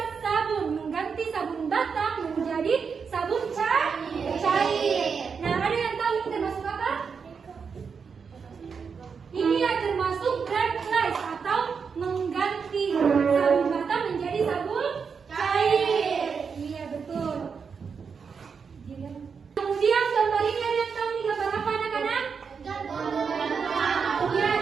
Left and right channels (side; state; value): left; quieter; 5.9 dB